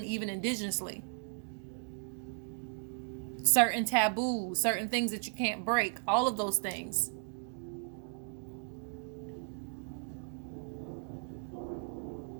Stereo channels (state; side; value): silent; left; 54 dB below the other